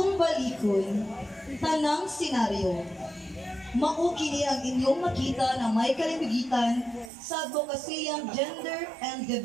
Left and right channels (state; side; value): drops out; left; at 7.1 s